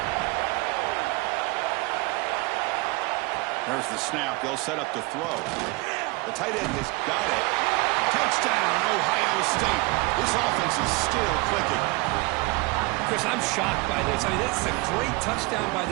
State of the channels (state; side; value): quieter; left; 25.1 dB